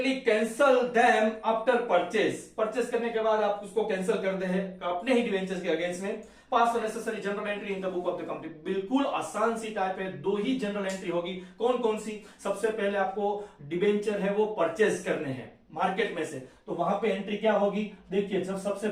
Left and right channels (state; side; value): identical; both; correlation 1.00